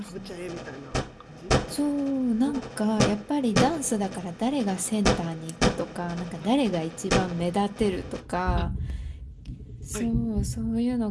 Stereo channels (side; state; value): both; identical; correlation 1.00